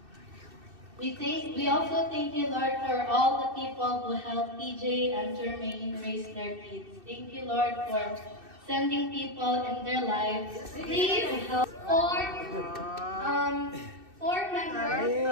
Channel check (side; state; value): left; late; 2.6 ms